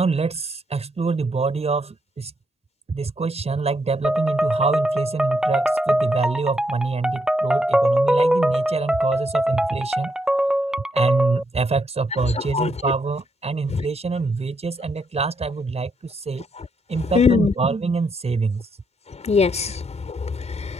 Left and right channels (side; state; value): both; normal; correlation 0.78